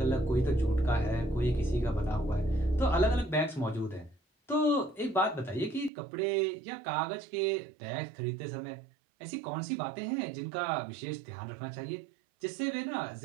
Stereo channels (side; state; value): left; drops out; at 5.9 s